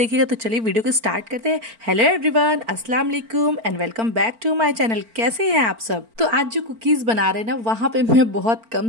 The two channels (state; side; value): late; left; 4.4 ms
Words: तो चलिए वीडियो को स्टार्ट करते हैं। हेलो एवरीवन, अस्सलाम वालेकुम and welcome back to my channel. कैसे हैं आप सब? तो आज जो कुकीज़ बना रहे हैं ना, वहाँ पे मैं बहुत कम